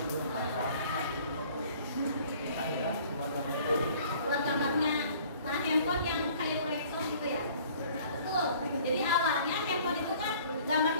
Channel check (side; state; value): both; inverted; correlation -0.53